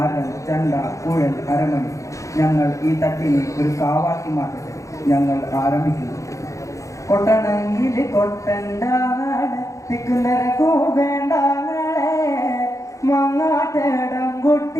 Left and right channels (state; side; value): late; right; 0.15 ms